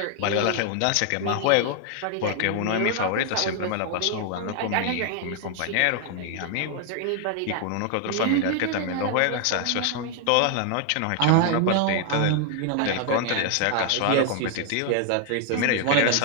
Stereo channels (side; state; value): both; different; correlation 0.00